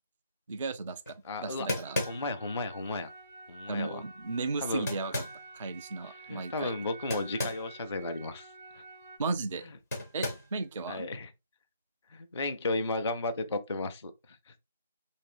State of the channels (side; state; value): both; inverted; correlation -0.65